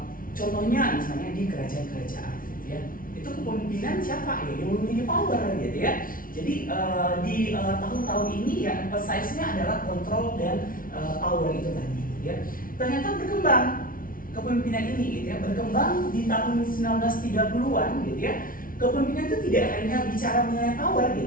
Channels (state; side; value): late; right; 0.41 ms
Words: Contohnya misalnya di kerajaan-kerajaan gitu ya, itu kepemimpinan siapa ya yang memiliki power gitu ya. Jadi di tahun-tahun ini ya emphasize-nya adalah kontrol dan power itu tadi gitu ya. Ternyata berkembang kepemimpinan ini gitu ya, berkembang di tahun 1930-an gitu ya. Kepemimpinan itu tidak hanya bicara mengenai power